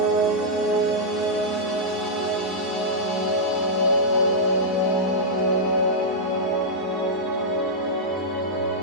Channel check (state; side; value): normal; both; correlation -0.08